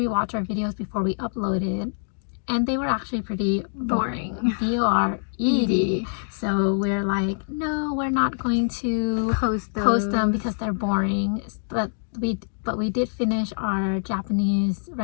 our videos before we upload it, and they were actually pretty boring. B-O-R-E-D. So we're like, no, we're not going to post them because they're boring. But we did finish our Japanese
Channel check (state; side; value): silent; right; digital silence